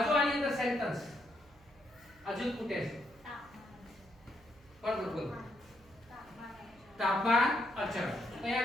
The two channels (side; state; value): right; noise; hum, 27 dB below the sound